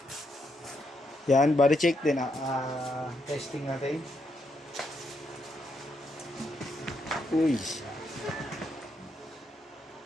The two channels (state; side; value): normal; both; correlation 0.78